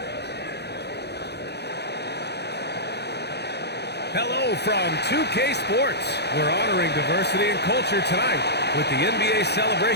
Hello from 2K Sports. We're honoring diversity and culture tonight with the NBA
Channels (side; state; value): right; late; 0.48 ms